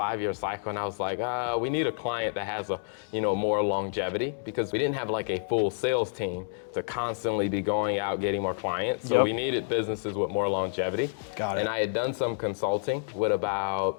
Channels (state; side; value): silent; right; 59 dB below the other